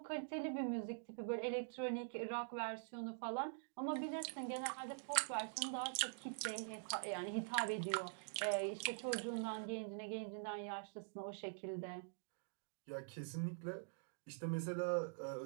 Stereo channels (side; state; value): left; silent; digital silence